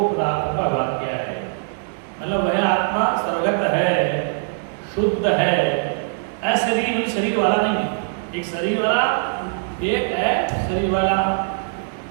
पदार्थ का भाग किया है। मतलब वह आत्मा सर्वगत है, शुद्ध है, अशरीर शरीर वाला नहीं है, एक शरीर वाला एक है शरीर वाला,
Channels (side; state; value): left; silent; digital silence